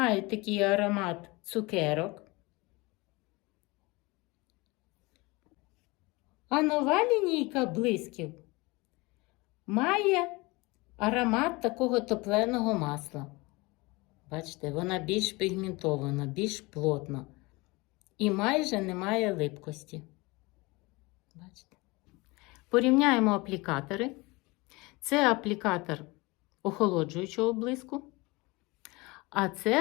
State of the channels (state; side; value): quieter; right; 24.2 dB